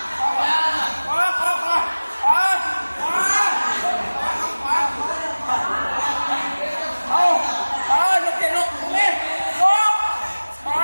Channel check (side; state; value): both; inverted; correlation -1.00